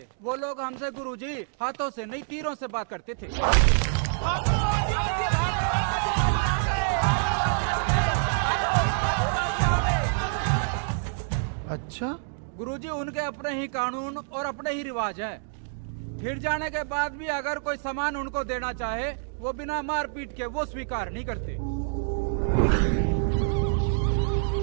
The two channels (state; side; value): silent; left; digital silence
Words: वो लोग हमसे गुरुजी हाथों से नहीं तीरों से बात करते थे। अच्छा, गुरुजी उनके अपने ही कानून और अपने ही रिवाज है। फिर जाने के बाद भी अगर कोई सामान उनको देना चाहे, वो बिना मारपीट के वो स्वीकार नहीं करते।